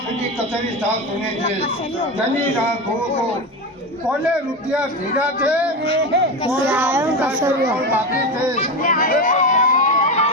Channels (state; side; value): normal; both; correlation 0.19